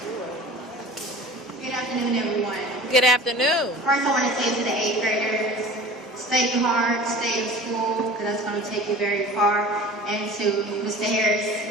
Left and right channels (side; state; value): both; normal; correlation 0.40